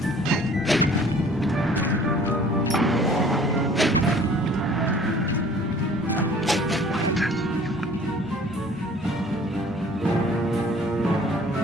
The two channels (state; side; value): normal; both; correlation 0.51